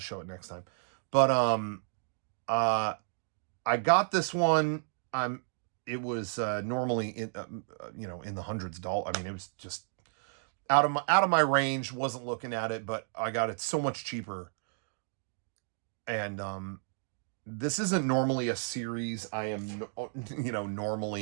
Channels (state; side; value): silent; left; digital silence